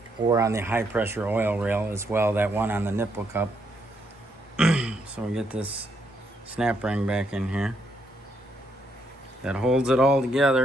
Or on the high pressure oil rail as well, that one on the nipple cup. So we get this snap ring back in here. That holds it all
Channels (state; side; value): normal; both; correlation 0.75